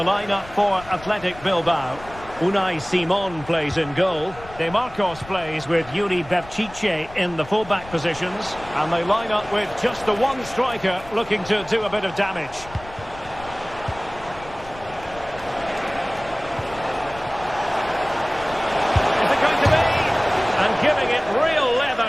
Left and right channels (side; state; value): left; noise; rumble, 18 dB below the sound